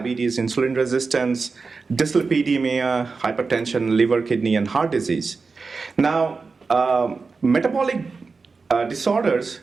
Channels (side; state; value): left; quieter; 4.4 dB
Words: insulin resistance, dyslipidemia, hypertension, liver, kidney, and heart disease. Now, metabolic disorders